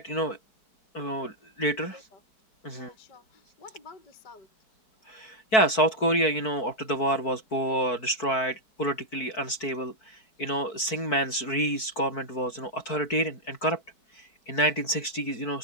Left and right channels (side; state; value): right; late; 4.5 ms